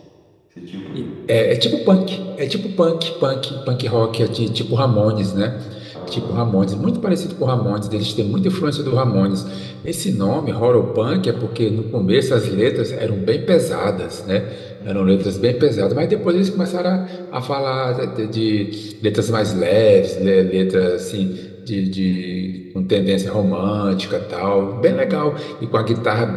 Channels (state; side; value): identical; both; correlation 1.00